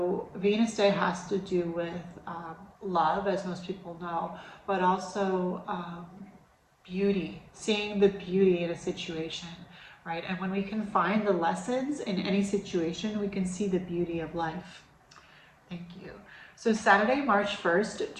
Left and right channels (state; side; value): identical; both; correlation 1.00